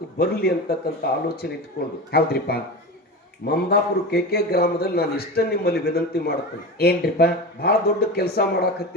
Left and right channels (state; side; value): normal; both; correlation 0.26